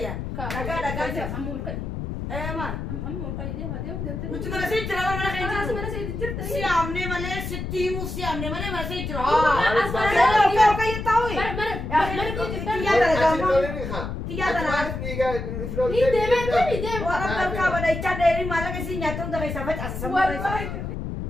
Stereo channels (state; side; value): noise; left; rumble, 5 dB below the sound